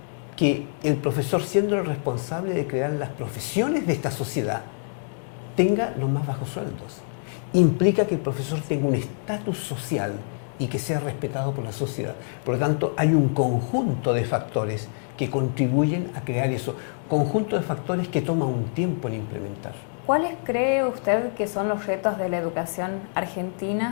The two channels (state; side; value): silent; right; digital silence